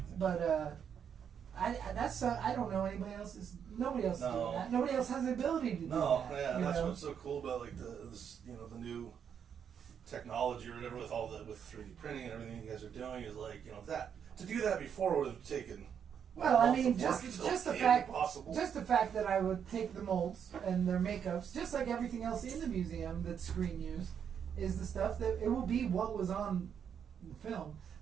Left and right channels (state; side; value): quieter; left; 7.9 dB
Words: But I don't know anybody else. Nobody else is doing that. Nobody else has the ability to do that. No, yeah, and that's know? what's so cool about like the new technology or whatever with 3D printing and everything you guys are doing is like, you know, that to do that before would have taken. Well, I mean, just the fact that I would take the molds and their makeups, just like everything else in the museum that's screen used, is the stuff that it will be what was on the film.